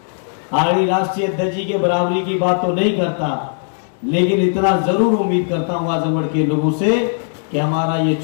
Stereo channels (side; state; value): right; silent; digital silence